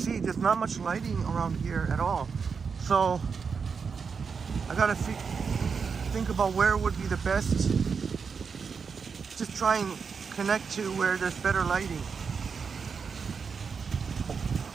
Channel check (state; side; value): quieter; left; 5.7 dB